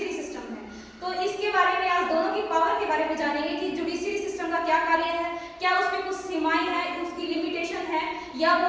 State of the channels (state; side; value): identical; both; correlation 1.00